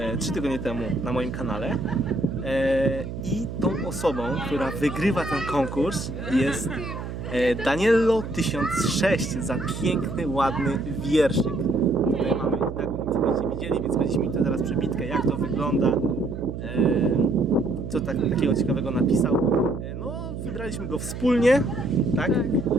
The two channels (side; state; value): right; noise; hum, 7 dB below the sound